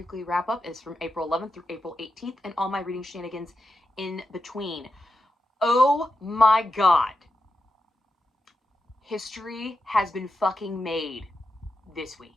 wrap up is from April 11th through April 18th and all my reading shenanigans in between. Oh my God. History has been fucking made this week.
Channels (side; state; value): both; normal; correlation 0.88